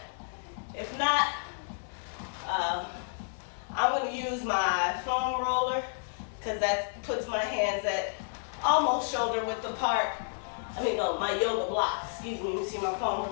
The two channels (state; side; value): silent; right; 57 dB below the other